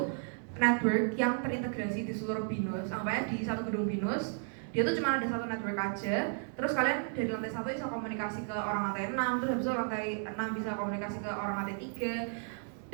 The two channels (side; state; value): left; silent; 55 dB below the other